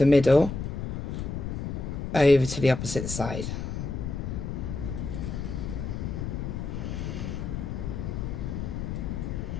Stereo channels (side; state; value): left; noise; rumble, 4 dB below the sound